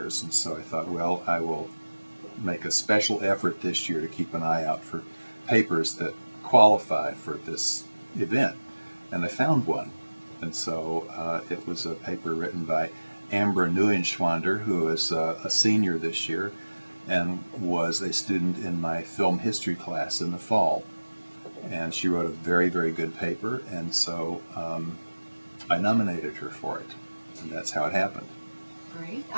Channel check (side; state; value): both; inverted; correlation -1.00